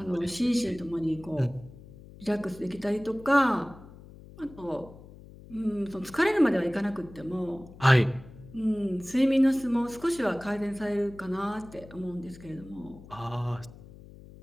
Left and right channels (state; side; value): noise; left; hum, 19 dB below the sound